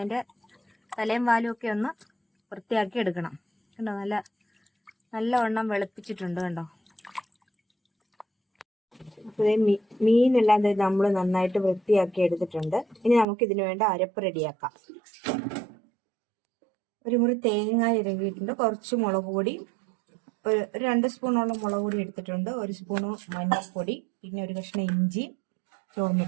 തലയും വാലും ഒക്കെ ഒന്ന് വൃത്തിയാക്കി എടുക്കണം. കണ്ടോ, നല്ലവണ്ണം വെളുപ്പിച്ചിട്ടുണ്ട് കണ്ടോ. മീനെല്ലാം നമ്മൾ നന്നായിട്ട് വൃത്തിയാക്കി എടുത്തിട്ടുണ്ട്. ഇനി നമുക്ക് ഇതിനു വേണ്ട അരപ്പ് റെഡിയാക്കാം. ഒരു മുറി തേങ്ങ ഇറങ്ങിയിട്ടുണ്ട്, കുറച്ച് മുളക് പൊടി, ഒരു 2 സ്പൂണോളം മുളക് പൊടി എടുത്തിട്ടുണ്ട്, 1 സ്പൂണ് മഞ്ഞൾപ്പൊടി, പിന്നെ ഒരു കഷ്ണം ഇഞ്ചി,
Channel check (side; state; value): left; drops out; at 13.2 s